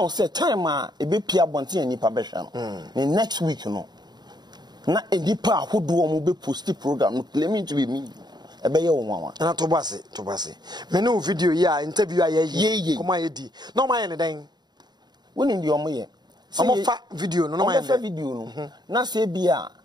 say time e be pia bonte anipa be hwa no. The next week no. Na enipa ahodo mo be post program no claiming to be me. Ebeye wo nwa na to base me no video ya interview aye kuma ye di no ma ye ne den woni ndi omo ye omo fa video no ma ye fa video no na se bia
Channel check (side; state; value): left; late; 0.20 ms